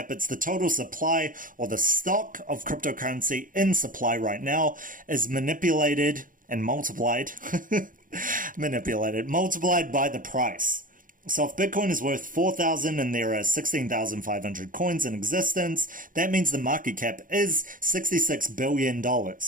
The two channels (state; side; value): late; left; 0.39 ms